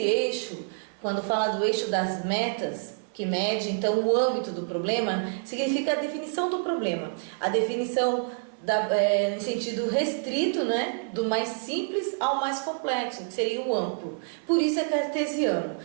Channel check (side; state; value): left; silent; 57 dB below the other